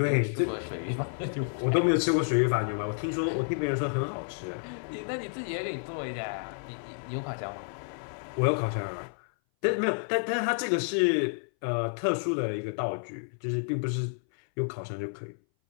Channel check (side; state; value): right; silent; 58 dB below the other